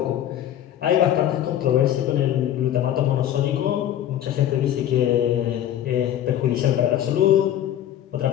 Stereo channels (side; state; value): right; quieter; 11.3 dB